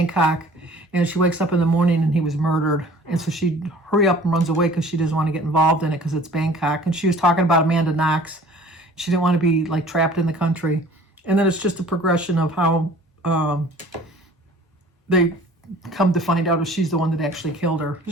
and she wakes up in the morning and he was murdered. And so she hurry up and runs away because she doesn't want to get involved in it because it's Bangkok. And she was talking about Amanda Knox. She didn't want to be, like, trapped in the country. And then it's just a progression of how they come to find out if she's the one that actually killed her.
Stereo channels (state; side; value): normal; both; correlation 0.49